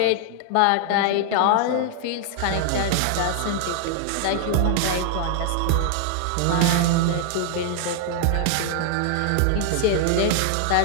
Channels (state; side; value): different; both; correlation 0.00